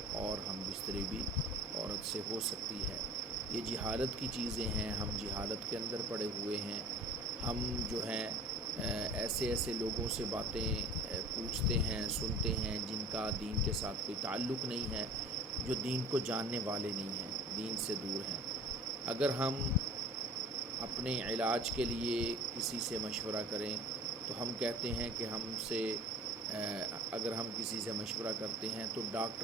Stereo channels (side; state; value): both; normal; correlation 0.43